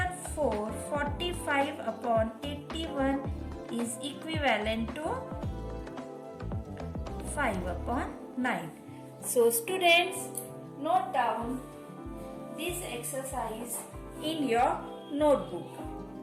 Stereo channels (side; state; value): both; identical; correlation 1.00